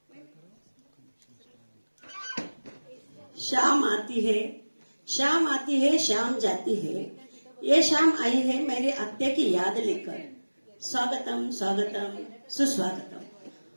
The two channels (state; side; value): inverted; both; correlation -1.00